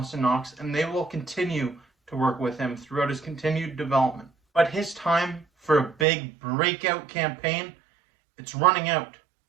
Knox, and they will continue to work with him throughout his continued development. But his time for a big breakout campaign, it's running out.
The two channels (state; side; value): drops out; left; at 6.1 s